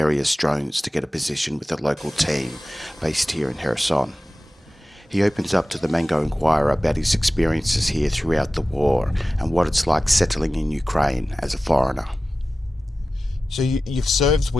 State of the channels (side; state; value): both; normal; correlation 0.95